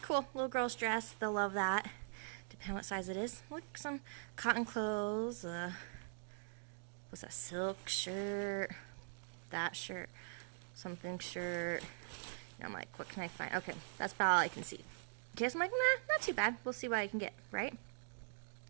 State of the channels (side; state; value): left; silent; digital silence